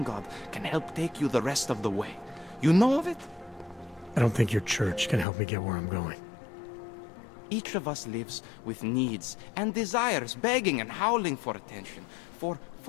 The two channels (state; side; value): drops out; right; at 5.2 s